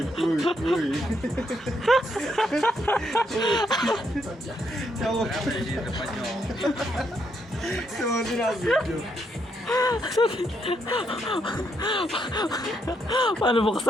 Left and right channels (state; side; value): normal; both; correlation 0.76